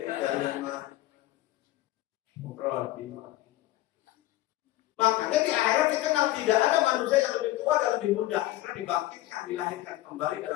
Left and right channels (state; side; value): quieter; right; 16.1 dB